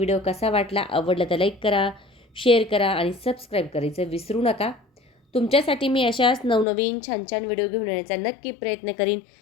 कसा वाटला. आवडला तर लाईक करा, शेअर करा आणि सबस्क्राईब करायचं विसरू नका. तुमच्यासाठी मी अशाच नवनवीन छान छान व्हिडिओ घेऊन येण्याचा नक्की प्रयत्न करीन.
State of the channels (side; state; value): right; drops out; at 6.7 s